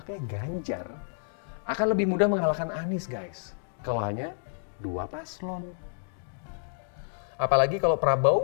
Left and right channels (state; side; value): silent; right; digital silence